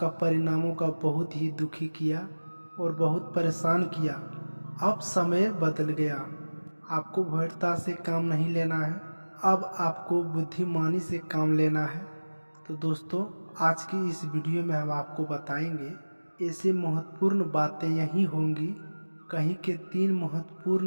परिणामों का बहुत ही दुखी किया और बहुत परेशान किया। अब समय बदल गया, आपको भयता से काम नहीं लेना है, अब आपको बुद्धिमानी से काम लेना है। तो दोस्तों, आज की इस वीडियो में हम आपको बताएंगे ऐसे महत्वपूर्ण बातें यही होंगी। कहीं के 3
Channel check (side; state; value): both; inverted; correlation -1.00